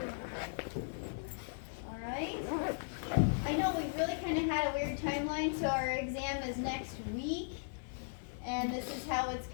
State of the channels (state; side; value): silent; right; digital silence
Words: All right. I know we really kind of had a weird timeline, so our exam is next week, and this is how it's